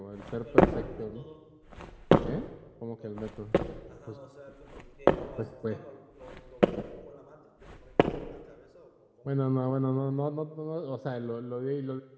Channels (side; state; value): both; identical; correlation 1.00